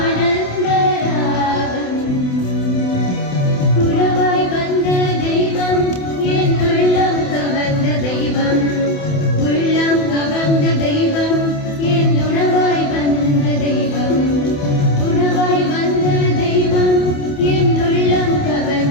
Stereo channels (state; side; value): late; right; 28 ms